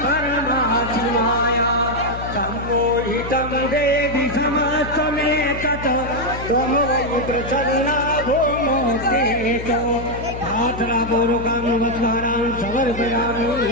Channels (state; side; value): noise; left; hum, 10 dB below the sound